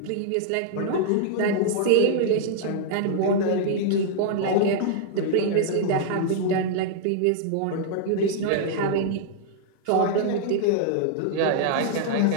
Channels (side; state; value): both; different; correlation -0.01